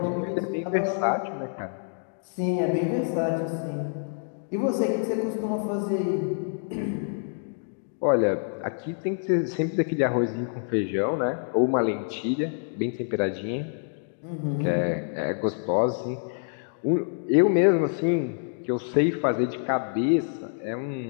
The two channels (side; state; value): right; silent; digital silence